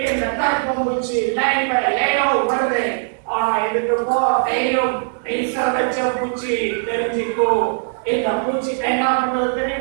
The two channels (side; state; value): left; silent; digital silence